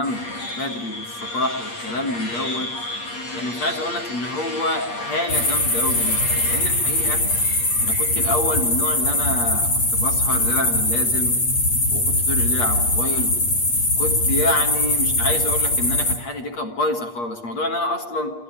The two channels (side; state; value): right; late; 8.5 ms